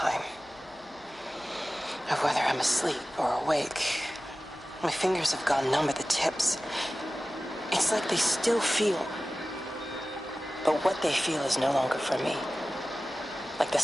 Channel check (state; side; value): normal; both; correlation 0.96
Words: Of whether I'm asleep or awake. My fingers have gone numb at the tips. It's like they still feel. But what they feel is no longer for me. Like the